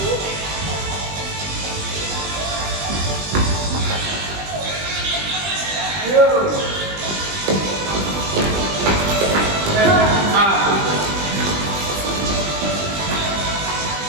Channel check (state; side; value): late; left; 20 ms